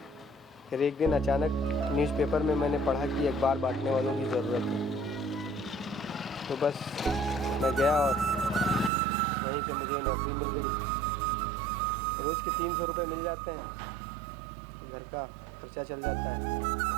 फिर एक दिन अचानक न्यूज़पेपर में मैंने पढ़ा कि अखबार बांटने वालों की ज़रूरत है, तो बस मैं गया और वहीं से मुझे नौकरी मिल गई। रोज़ के 300 रुपये मिल जाते हैं, घर का खर्चा चल जाता है,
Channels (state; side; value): drops out; left; at 8.9 s